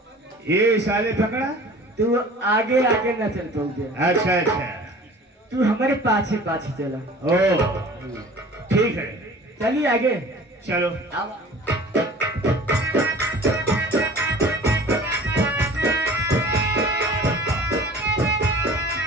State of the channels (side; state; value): both; normal; correlation 0.44